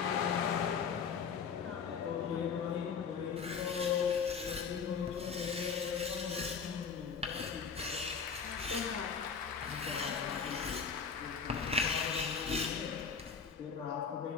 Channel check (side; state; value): right; quieter; 6.2 dB